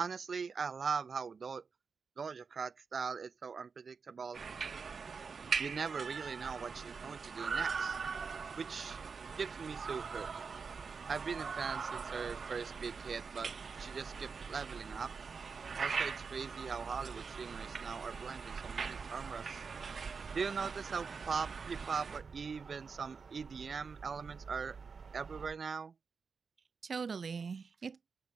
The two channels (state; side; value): quieter; left; 5.3 dB